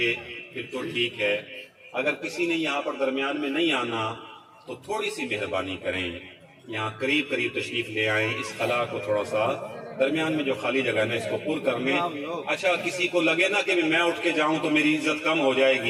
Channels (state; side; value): identical; both; correlation 1.00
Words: پھر تو ٹھیک ہے، اگر کسی نے یہاں پر درمیان میں نہیں آنا تو تھوڑی سی مہربانی کریں، یہاں قریب تشریف لے آئیں، اس خلا کو تھوڑا سا درمیان میں جو خالی جگہ ہے نا اس کو پر کر لیں. اچھا کسی کو لگے نا کہ میں اٹھ کے جاؤں تو میری عزت کم ہو جائے